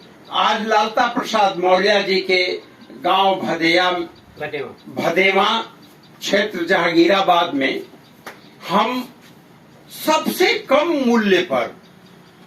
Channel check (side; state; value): both; identical; correlation 1.00